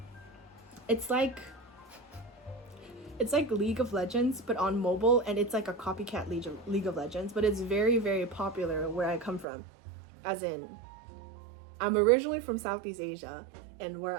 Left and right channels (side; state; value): left; drops out; at 9.5 s